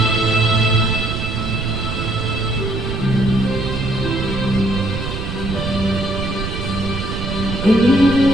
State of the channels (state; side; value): noise; right; rumble, 4 dB below the sound